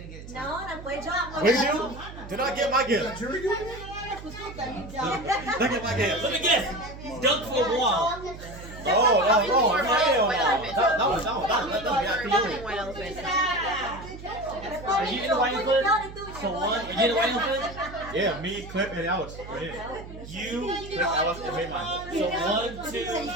get it. No, 那不会这样。 What do you do? Did I get my gift? Did I get my gift? Let me guess. Dunk for a wall. Oh, no, that was White elephant. Are you in the white elephant? So one. You get a white elephant? Yeah, me, Clip, and Alex. Right here. You. Clip, Alex, and me, mine. So 1, 2, 3,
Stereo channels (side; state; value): right; noise; hum, 14 dB below the sound